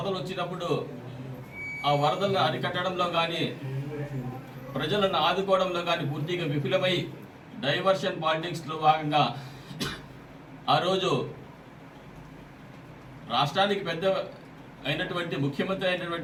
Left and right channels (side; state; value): both; identical; correlation 1.00